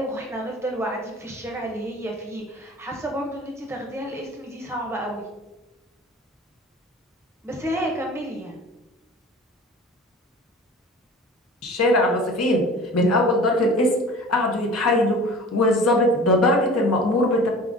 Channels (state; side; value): normal; both; correlation 0.42